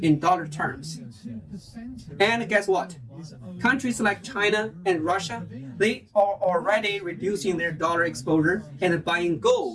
in dollar terms. And guess what? Countries like China and Russia, they are already reducing their dollar exposure and buying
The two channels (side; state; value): both; identical; correlation 1.00